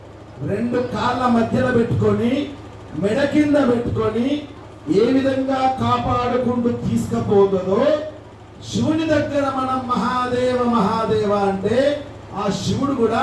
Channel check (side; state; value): both; identical; correlation 1.00